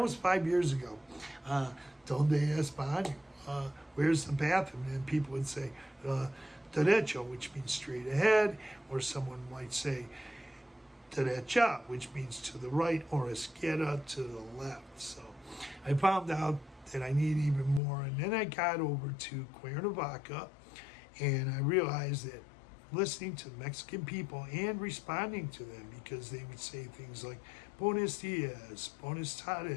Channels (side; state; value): right; drops out; at 17.8 s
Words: was 5 years ago. Donde es baño? Where's the bathroom? And people would say, derecho, which means straight ahead, or someone might say derecha, which means to the right, or izquierda, to the left. So I found out that I need even more, and then I got over to Cuernavaca, and I realized that listening to Mexican people and responding to them, because they would say things like buenos dias, buenas